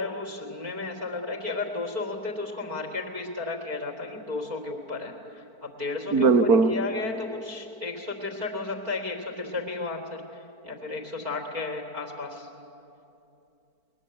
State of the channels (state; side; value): late; left; 4.5 ms